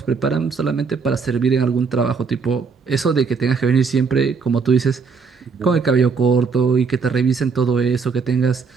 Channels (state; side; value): quieter; left; 5.2 dB